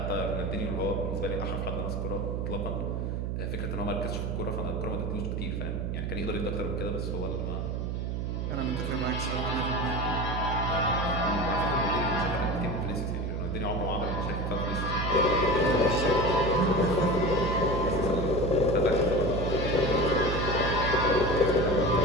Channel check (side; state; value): right; noise; hum, 2 dB below the sound